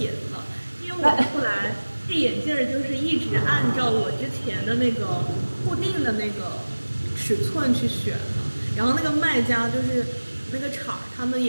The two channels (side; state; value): both; inverted; correlation -1.00